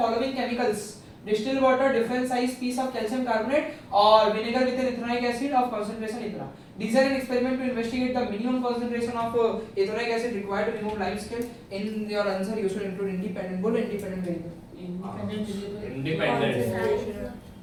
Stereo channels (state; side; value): identical; both; correlation 1.00